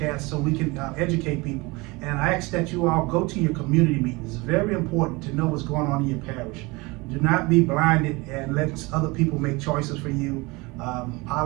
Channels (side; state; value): left; quieter; 24.5 dB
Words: so we can educate people. And I ask that you all go to your community meetings. It's very important to know what's going on in your parish. Do not be blinded and let other people make choices for you.